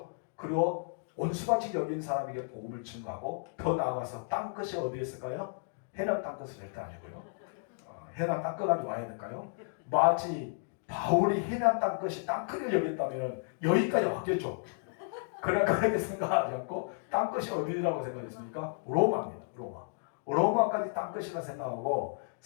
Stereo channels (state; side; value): silent; right; digital silence